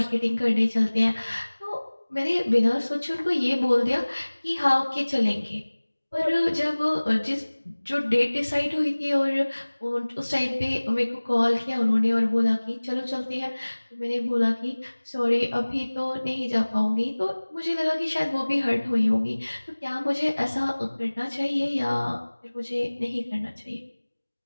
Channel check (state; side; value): inverted; both; correlation -1.00